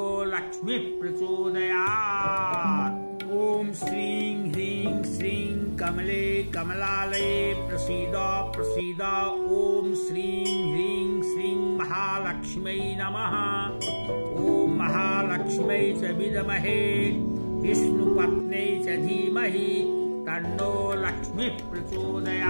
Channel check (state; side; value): inverted; both; correlation -1.00